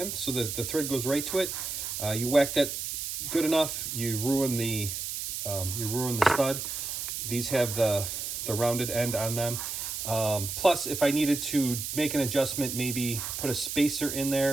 so the thread goes right to it. You whack that good enough, you ruin the stud. These have the rounded end on them. Plus, if I needed to make an adjustment, maybe put a spacer in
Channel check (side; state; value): right; noise; hiss, 4 dB below the sound